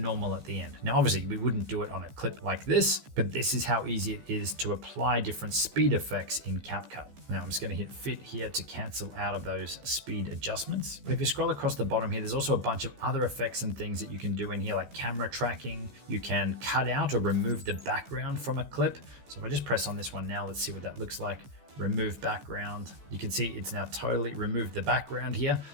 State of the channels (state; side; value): late; left; 15 ms